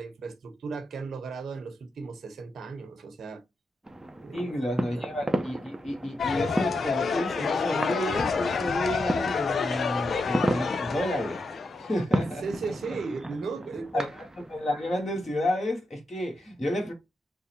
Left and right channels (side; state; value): both; normal; correlation 0.85